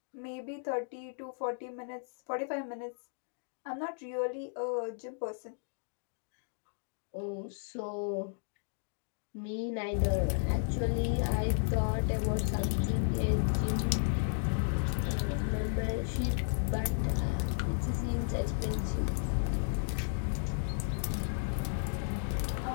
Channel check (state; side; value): silent; right; digital silence